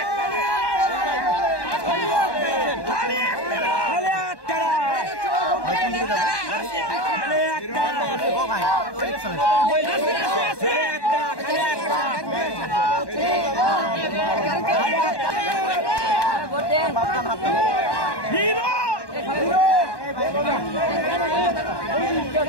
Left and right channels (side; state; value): right; late; 1.1 ms